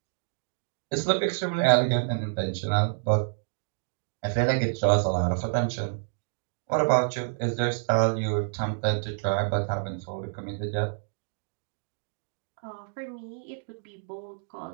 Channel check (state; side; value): silent; left; digital silence